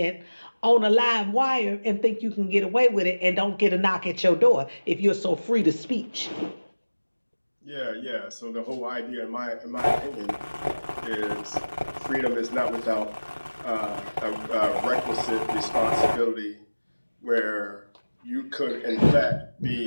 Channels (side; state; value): both; inverted; correlation -1.00